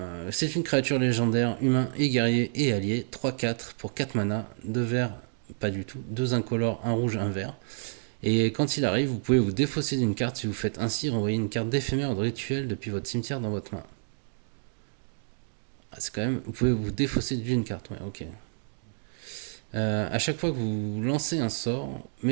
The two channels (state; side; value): silent; left; digital silence